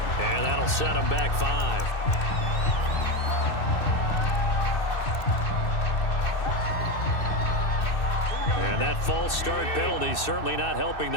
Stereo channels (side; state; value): right; late; 2.6 ms